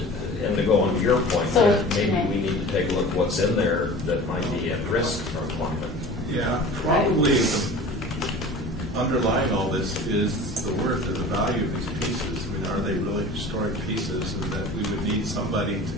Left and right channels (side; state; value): both; normal; correlation 0.40